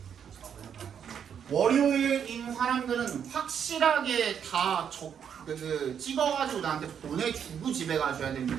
월요일인 사람들은 확실하게 다 찍어가지고 나한테 보내주고 집에 가셔야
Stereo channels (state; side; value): quieter; left; 8.1 dB